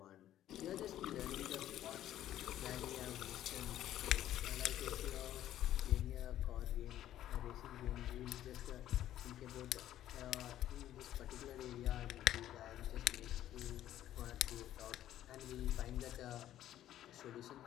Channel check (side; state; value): right; quieter; 12.4 dB